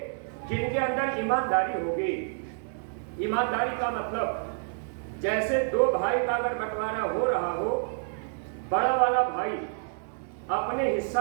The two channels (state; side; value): silent; left; digital silence